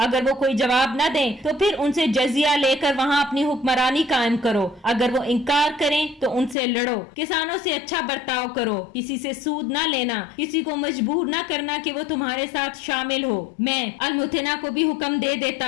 اگر وہ کوئی جواب نہ دیں تو پھر ان سے جزیہ لے کر وہاں اپنی حکمرانی قائم کرو۔ اگر وہ انکار کریں تو ان سے لڑو۔ کسانوں سے اچھا برتاؤ کرو، کسی سے سود نہ لینا، کسی کو مجبور نہ کرنا کہ وہ تمہارے ساتھ شامل ہو۔ میں المتنا کو بھی حکم دے دیتا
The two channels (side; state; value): right; drops out; at 6.6 s